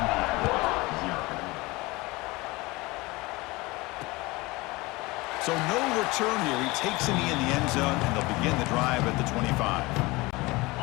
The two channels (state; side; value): quieter; right; 22.5 dB